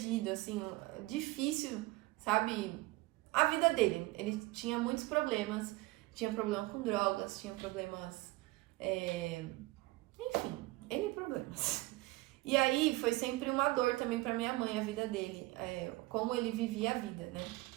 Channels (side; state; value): left; quieter; 20.8 dB